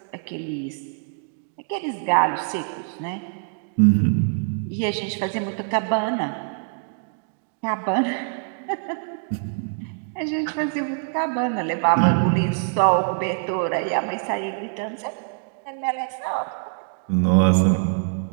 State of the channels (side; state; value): left; silent; digital silence